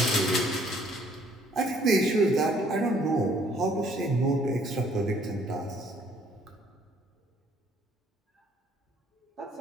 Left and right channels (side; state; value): both; normal; correlation 0.62